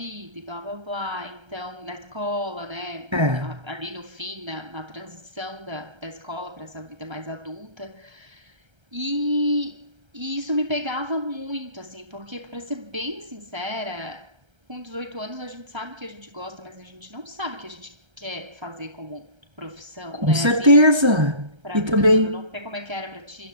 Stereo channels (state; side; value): late; left; 1.3 ms